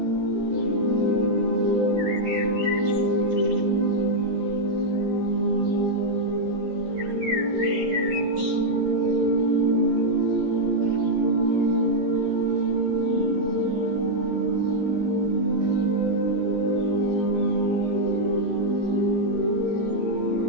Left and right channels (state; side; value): late; left; 13 ms